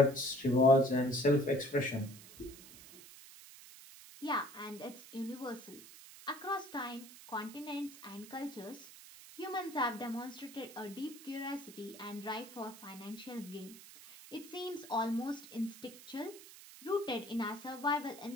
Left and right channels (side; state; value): right; noise; hiss, 17 dB below the sound